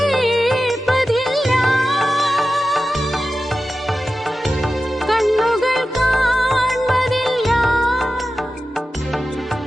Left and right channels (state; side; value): normal; both; correlation 0.93